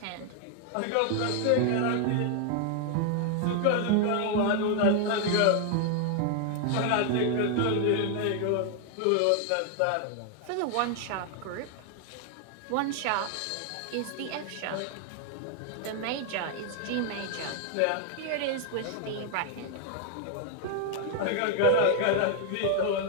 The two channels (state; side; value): different; both; correlation 0.00